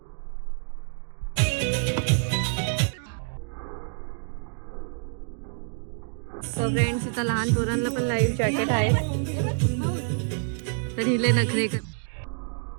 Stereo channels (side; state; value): left; silent; digital silence